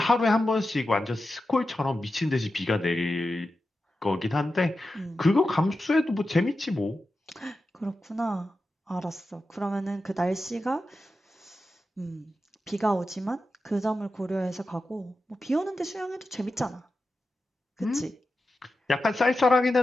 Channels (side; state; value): both; normal; correlation 0.91